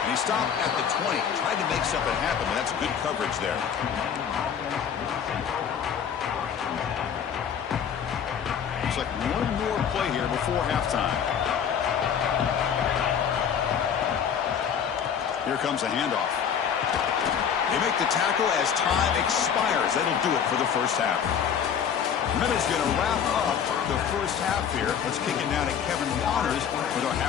he stopped at the 20. Tried to make something happen, but that's good coverage there. Looks like one more play here before halftime. Here comes a handoff. They make the tackle as time expires. That'll do it for the first half. Minutes going to wrap up the first half here. Let's kick it down to Kevin Waters with our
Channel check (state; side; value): quieter; right; 7.9 dB